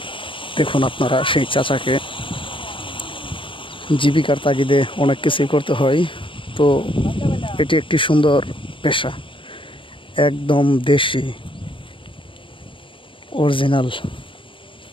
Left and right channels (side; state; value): right; late; 0.25 ms